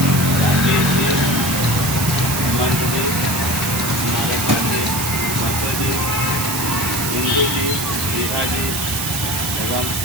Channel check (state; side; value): noise; right; hiss, 2 dB below the sound